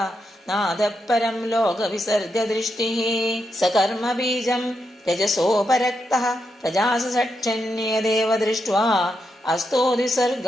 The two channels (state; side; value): normal; both; correlation 0.84